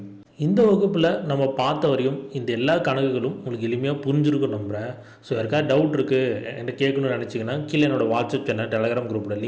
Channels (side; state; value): both; identical; correlation 1.00